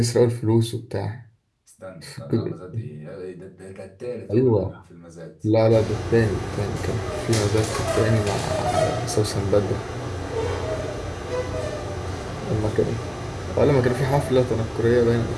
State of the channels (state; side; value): identical; both; correlation 1.00